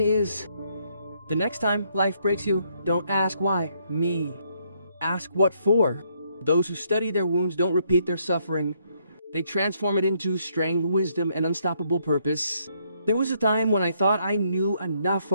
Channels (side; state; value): both; inverted; correlation -0.72